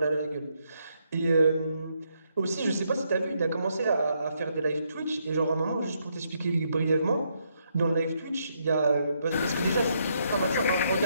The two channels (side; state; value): both; inverted; correlation -0.76